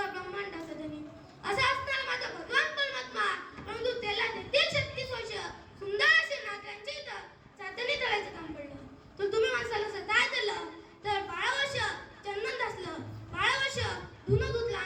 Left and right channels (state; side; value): identical; both; correlation 1.00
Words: ब्रह्मांडाचा धनी असा असताना माझा भगवान परमात्मा परंतु त्याला देखील 36 वर्ष सुंदर असे नागरांच्या इथं चाचणी तळायचं काम पडलं. तर तुम्ही माणसाला सताय दिलं तर 12 वर्ष चंदन घासलं, 12 वर्ष धुणं धुतलं